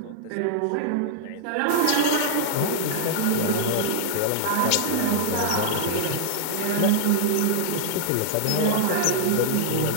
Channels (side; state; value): both; different; correlation -0.01